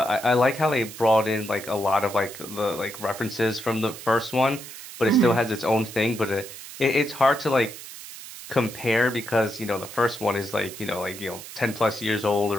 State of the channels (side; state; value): right; noise; hiss, 13 dB below the sound